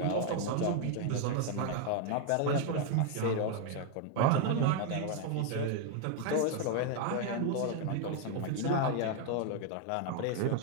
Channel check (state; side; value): different; both; correlation 0.01